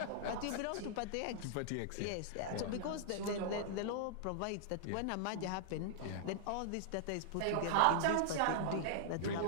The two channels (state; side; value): different; both; correlation -0.01